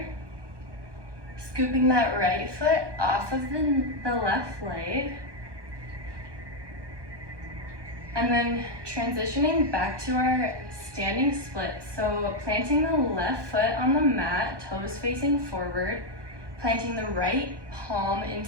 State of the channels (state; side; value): late; left; 1.2 ms